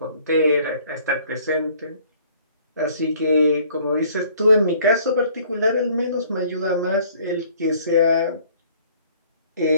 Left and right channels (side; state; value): both; inverted; correlation -0.57